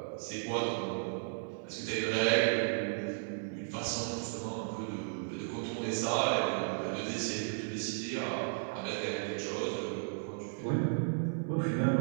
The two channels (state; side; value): silent; left; 55 dB below the other